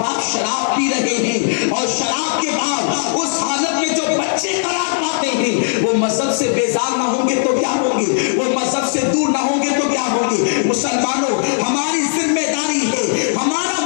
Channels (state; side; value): silent; right; digital silence